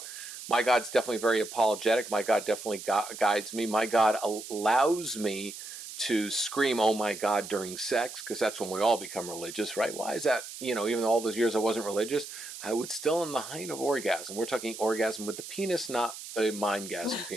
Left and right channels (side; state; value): right; noise; hiss, 11 dB below the sound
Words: God's definitely very apologetic. My God definitely guides me. My God allows me to scream, "Oh my God," during sex, because that's when we all become religious, right? Why is that? Even all those years I wasn't religious, I would still in the height of orgasm. We're talking orgasm with the penis, not a mindgasm